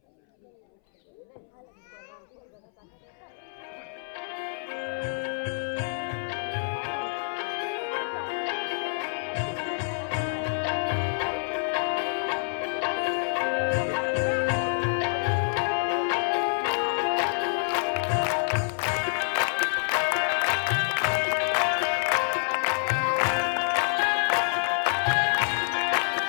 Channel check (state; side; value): silent; right; 60 dB below the other